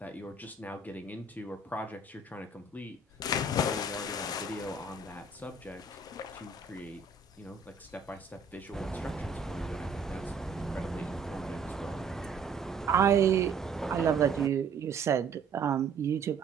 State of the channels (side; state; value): left; quieter; 4.4 dB